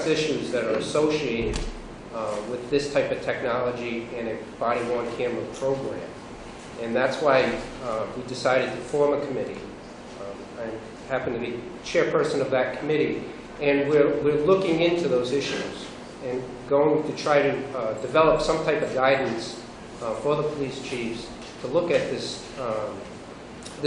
issues that are associated with this type of technology and a body-worn camera program. And that's why we decided to form a committee. I happen to be chairperson of that committee, and we're looking into those issues and going to try to develop some type of guidance for the police chiefs to look at this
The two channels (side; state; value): both; identical; correlation 1.00